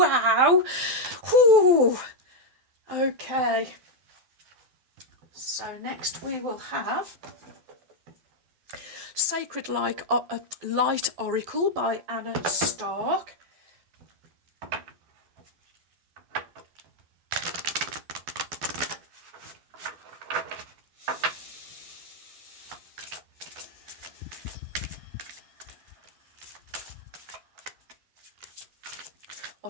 Whew. Okay. So next we will have Sacred Light Oracle by Anna Stark.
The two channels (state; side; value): late; left; 12 ms